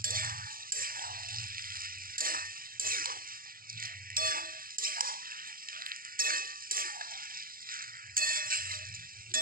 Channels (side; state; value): left; late; 0.42 ms